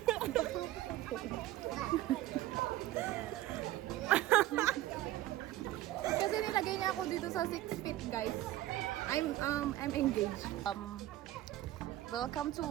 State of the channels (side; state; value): left; quieter; 15.0 dB